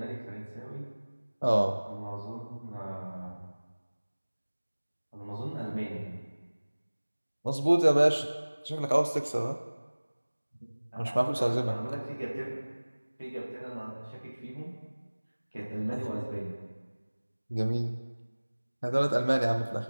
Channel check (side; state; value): both; inverted; correlation -1.00